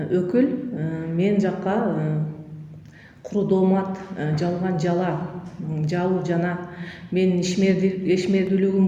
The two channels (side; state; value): both; identical; correlation 1.00